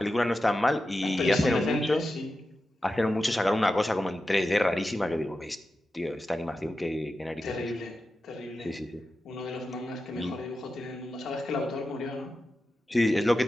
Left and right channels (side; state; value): both; normal; correlation 0.91